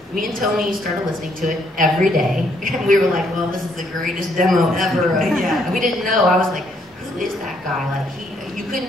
me and Tony started listening to it every day. And we were like, well, this is the greatest demo ever. And we didn't know. I was like, who is that guy? Like, you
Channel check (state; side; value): normal; both; correlation 0.70